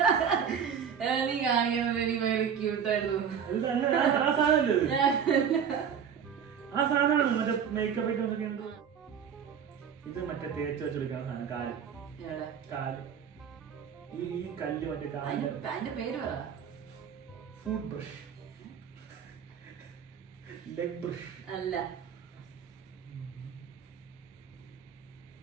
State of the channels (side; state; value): left; quieter; 7.6 dB